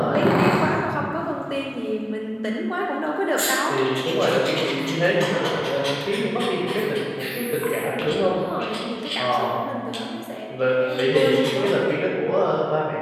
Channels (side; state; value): both; identical; correlation 1.00